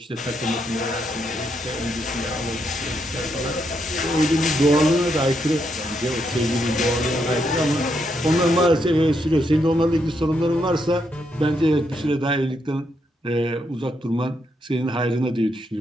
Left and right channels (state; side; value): normal; both; correlation 0.79